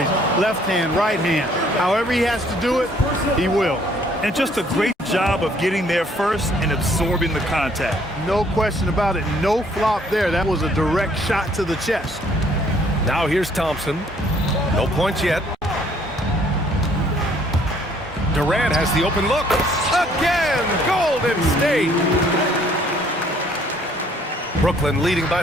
left hand, right hand. However he has to do it, he will. And just a great job of getting there first and absorbing the contact. No question about it. No flop there. That was a direct shot to the chest. Now here's Thompson. No points yet. Durant has the open look. Again, Golden State. Brooklyn leading by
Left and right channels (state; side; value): normal; both; correlation 0.62